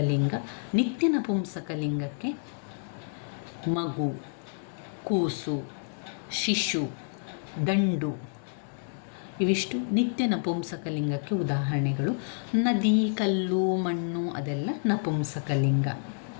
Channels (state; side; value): silent; right; digital silence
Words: ನಿತ್ಯ ನಪುಂಸಕಲಿಂಗಕ್ಕೆ ಮಗು, ಕೂಸು, ಶಿಶು, ದಂಡು ಇವಿಷ್ಟು ನಿತ್ಯ ನಪುಂಸಕಲಿಂಗಕ್ಕೆ ಉದಾಹರಣೆಗಳು. ನದಿ, ಕಲ್ಲು, ಮಣ್ಣು ಅದೆಲ್ಲ ನಪುಂಸಕಲಿಂಗ.